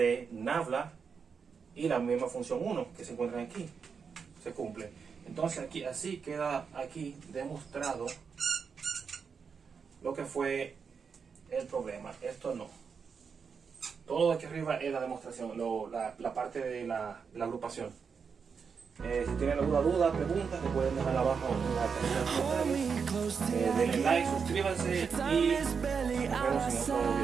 nabla y la misma función 1 que se encuentra aquí, se cumple. Entonces aquí, así queda aquí demostrado lo que fue el problema. Esto no. Todo aquí arriba es la demostración, la parte de la agrupación. Si tienen alguna duda, preguntas, se pueden dejar abajo en la caja de comentarios. Denle like, suscríbanse y nos vemos en otro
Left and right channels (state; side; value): quieter; left; 6.0 dB